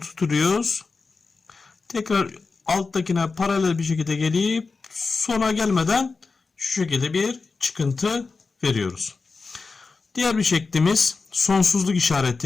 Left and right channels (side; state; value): right; quieter; 4.3 dB